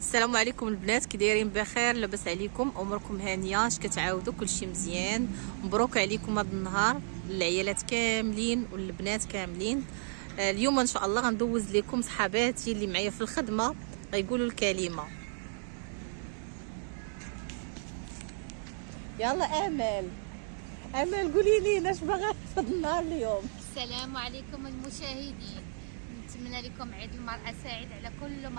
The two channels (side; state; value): left; silent; digital silence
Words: عليكم البنات، كي دايرين؟ بخير؟ لاباس عليكم؟ اموركم هانيه؟ اش كتعاودوا؟ كلشي مزيان؟ مبروك عليكم هذا النهار، العيالات كاملين والبنات كاملين. اليوم ان شاء الله غندوز لكم صحاباتي اللي معايا في الخدمه غيقولوا الكلمه. يلا امل قولي لي اش باغا في النهار اليوم. السلام عليكم المشاهدين، نتمنى لكم عيد المرأة سعيد على كل